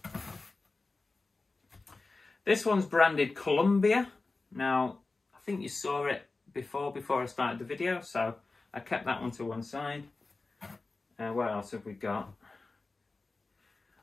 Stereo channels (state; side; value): quieter; right; 3.6 dB